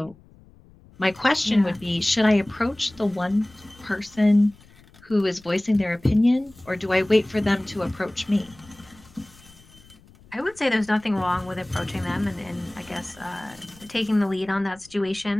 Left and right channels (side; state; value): left; noise; rumble, 26 dB below the sound